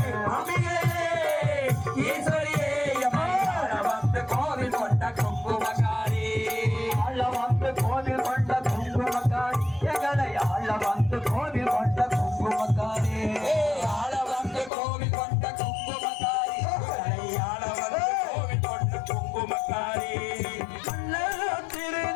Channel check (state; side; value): drops out; right; at 14.7 s